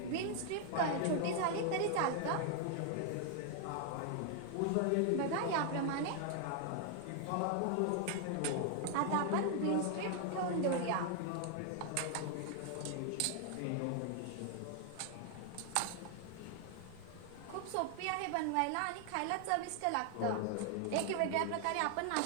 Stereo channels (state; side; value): different; both; correlation 0.00